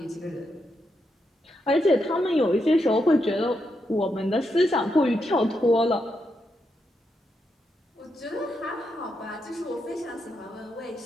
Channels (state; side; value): normal; both; correlation 0.82